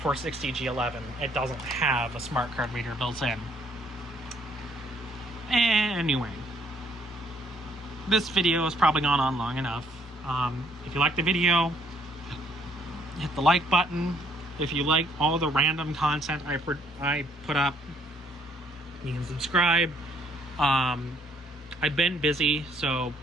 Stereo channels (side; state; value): both; normal; correlation 0.66